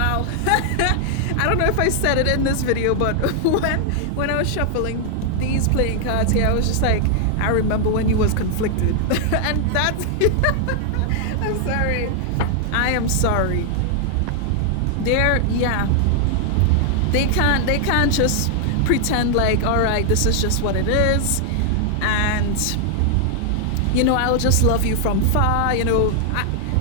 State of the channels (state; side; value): different; both; correlation 0.00